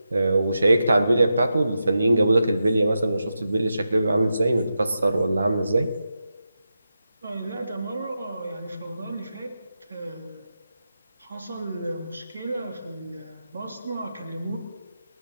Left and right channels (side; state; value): both; inverted; correlation -0.88